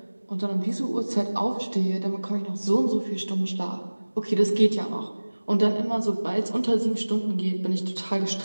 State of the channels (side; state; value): both; inverted; correlation -1.00